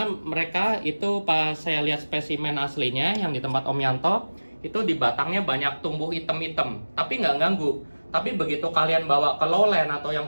mereka itu pas saya lihat spesimen aslinya yang di tempat Om Yanto, itu di batangnya banyak tumbuh item-item, tapi nggak ganggu. Tapi begitu kalian bawa ke lowland atau yang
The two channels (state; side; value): inverted; both; correlation -1.00